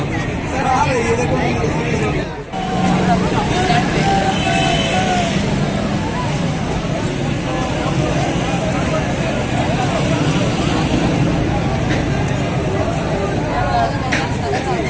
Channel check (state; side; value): identical; both; correlation 1.00